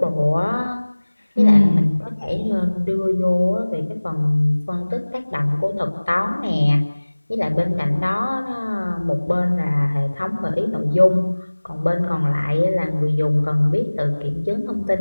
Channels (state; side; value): inverted; both; correlation -1.00